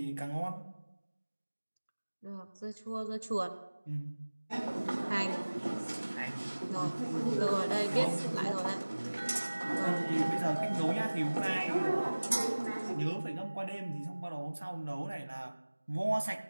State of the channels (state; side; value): inverted; both; correlation -1.00